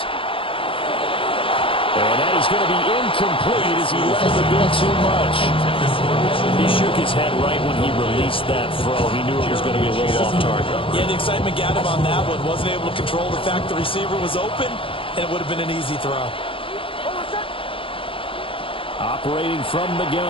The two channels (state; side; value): late; right; 0.26 ms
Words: And that is going to be incomplete as he left the bit too much. He shook his head right when he released that throw. He knew it was going to be a little off target. Yeah, the excitement got him on that one. Wasn't able to control the fact the receiver was open, and it would have been an easy throw. Operating from the